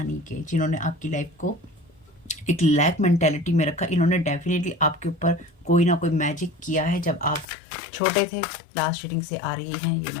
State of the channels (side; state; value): right; drops out; at 7.5 s